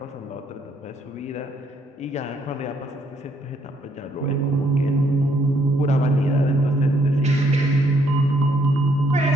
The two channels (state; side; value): normal; both; correlation 0.69